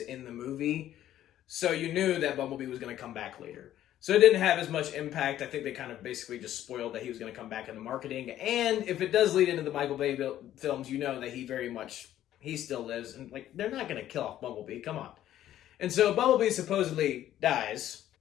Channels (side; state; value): right; quieter; 12.3 dB